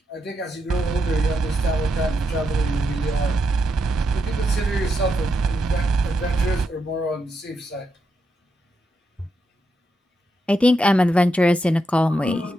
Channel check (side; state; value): both; normal; correlation 0.83